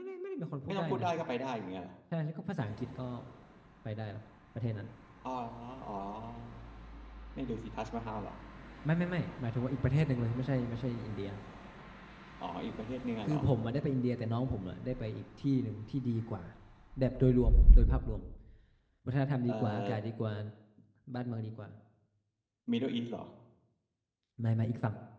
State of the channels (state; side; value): identical; both; correlation 1.00